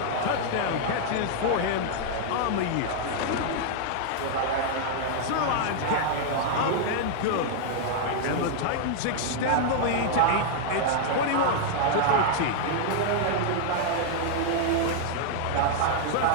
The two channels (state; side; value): different; both; correlation -0.01